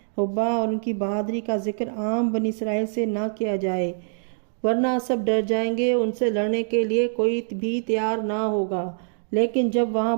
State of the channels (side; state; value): left; silent; digital silence